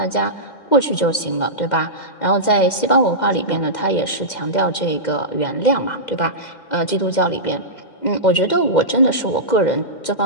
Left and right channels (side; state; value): right; late; 2.0 ms